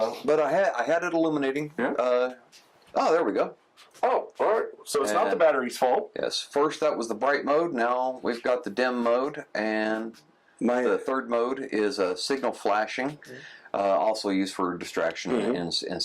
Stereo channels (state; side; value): identical; both; correlation 1.00